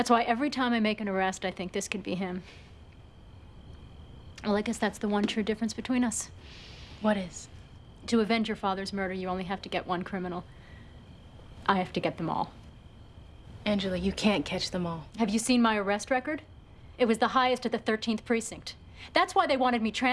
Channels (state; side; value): identical; both; correlation 1.00